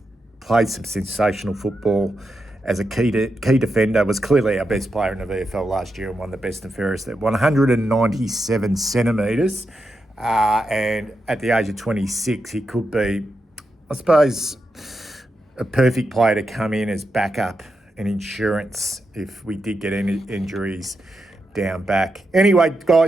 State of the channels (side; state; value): both; normal; correlation 0.86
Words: played some sensational football as a key defender, was clearly our best player in the VFL last year and won the best and fairest at 197 centimetres. And at the age of 26, he could be, I suppose, a perfect player to come in as backup and insurance if we did get any injuries down back. Anyway,